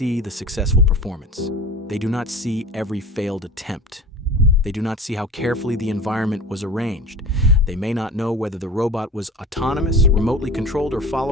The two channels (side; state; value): both; normal; correlation 0.37